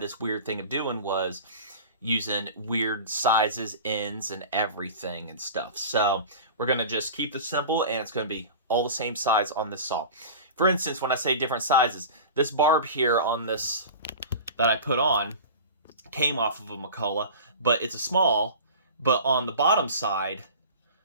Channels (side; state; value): both; inverted; correlation -0.35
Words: weird thing of doing was using weird sizes, ends, and everything and stuff. So we're going to just keep this simple, and it's going to be all the same size on this saw. For instance, when I say different sizes, this barb here on this that I put on came off of a McCulloch, but it's a small, but on the bottom side,